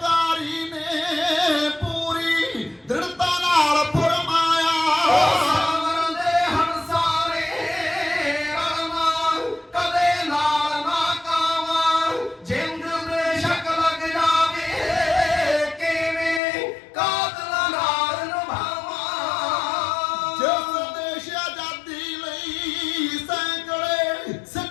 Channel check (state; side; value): drops out; right; at 16.4 s